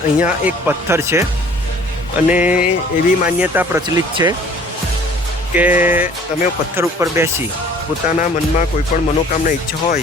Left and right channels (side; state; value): both; normal; correlation 0.52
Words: એક પથ્થર છે અને એવી માન્યતા પ્રચલિત છે કે તમે પથ્થર ઉપર બેસી પોતાના મનમાં કોઈ પણ મનોકામના ઈચ્છા